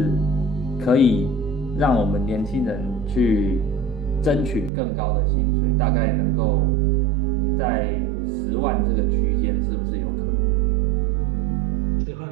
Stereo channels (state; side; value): drops out; left; at 4.7 s